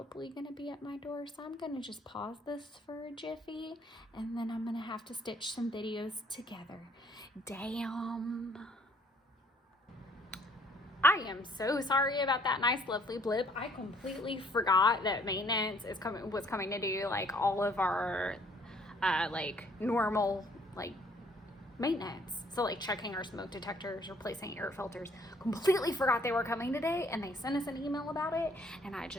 going to be at my door. So I'm going to just pause this for a jiffy, and then I'm going to have to stitch some videos together. Damn. I am so sorry about that nice, lovely blip. I completely forgot that maintenance was coming to do like all of our normal maintenance. So like checking our smoke detectors, replacing air filters. Completely forgot they were coming today, and they sent us an email about it, and I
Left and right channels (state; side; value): normal; both; correlation 0.62